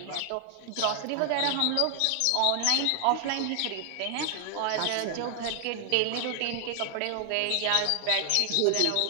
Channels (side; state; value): both; different; correlation 0.00